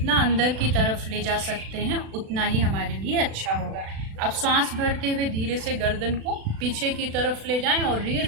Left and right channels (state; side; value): late; left; 36 ms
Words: अंदर की तरफ ले जा सकते हैं उतना ही हमारे लिए अच्छा होगा। अब सांस भरते हुए धीरे से गर्दन को पीछे की तरफ ले जाएं और रीढ़